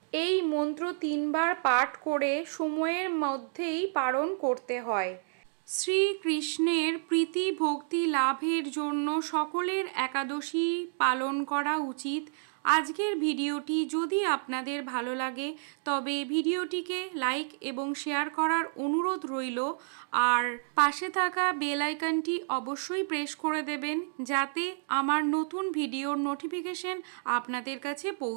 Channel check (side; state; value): left; silent; digital silence